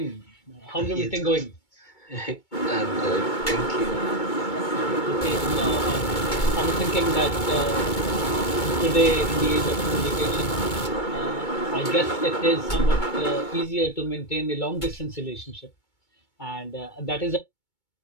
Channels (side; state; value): right; late; 2.2 ms